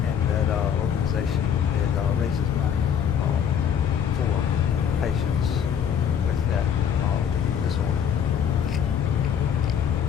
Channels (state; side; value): quieter; right; 8.3 dB